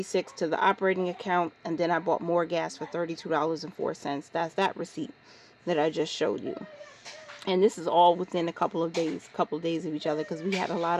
to the operating account, and then I bought more gas for $32.04. That's that receipt that I just showed you. And this is all within a couple of days of each other, because we had a lot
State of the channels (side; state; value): both; identical; correlation 1.00